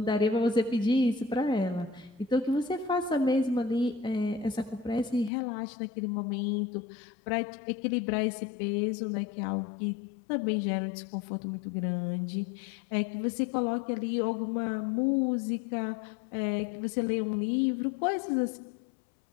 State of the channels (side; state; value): right; drops out; at 5.3 s